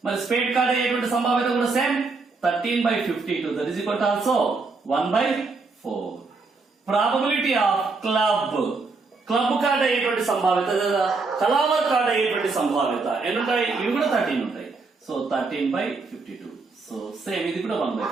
మరి స్పేడ్ కార్డ్ అయ్యేటువంటి సంభావ్యత కూడా same 13/52 that is equal to also 1/4. Probability of club card అయ్యేటువంటి సంభావ్యత లేదా కలావర్ కార్డ్ అయ్యేటువంటి సంభావ్యత ఎన్ని ఉంటాయి, ఇవి కూడా 13 ఉంటాయి. సో 13/52. సో సేమ్ ఇది కూడా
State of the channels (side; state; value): left; quieter; 4.1 dB